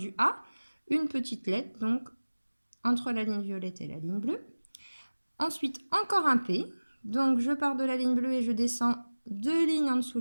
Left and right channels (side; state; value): both; inverted; correlation -1.00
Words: A, une petite lettre, donc entre la ligne violette et la ligne bleue. Ensuite, encore un P. Donc, je pars de la ligne bleue et je descends 2 lignes en dessous